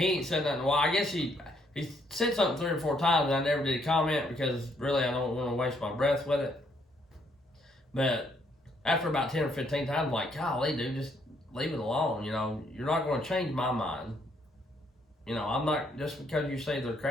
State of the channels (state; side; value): normal; both; correlation 0.70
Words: ain't said nothing. Well, I guess he said something 3 or 4 times, and I never did comment because really I don't want to waste my breath with it. But after about 10 or 15 times, I'm like, golly, dude, just leave it alone. You know, you're not going to change my mind. You know, I'm not, just because you say they're